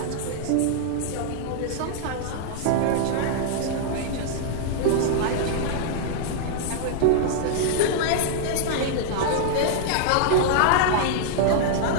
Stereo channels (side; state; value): both; different; correlation -0.01